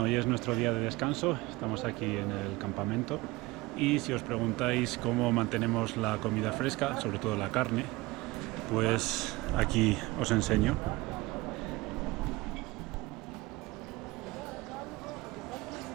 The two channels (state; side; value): quieter; left; 21.2 dB